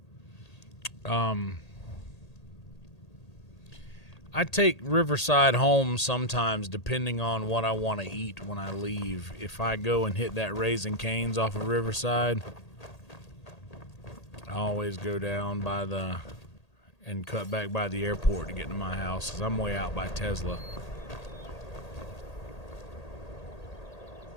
I take Riverside home sometimes depending on what I want to eat when I leave. If I go and hit that Raising Cane's off of Riverside, I always go down by and cut back by the airport to get to my house because I'm way out by Tesla.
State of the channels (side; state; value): right; late; 1.8 ms